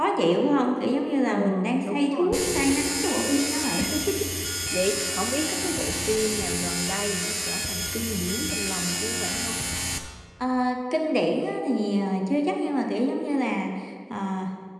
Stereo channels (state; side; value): identical; both; correlation 1.00